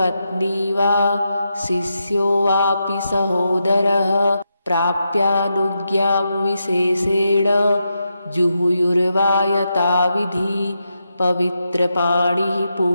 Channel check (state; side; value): inverted; both; correlation -0.85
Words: वा शिष्यो वापि सहोदरः प्राप्यानुज्ञां विशेषेण जुहुयुर्वा यथाविधि पवित्रपाणिः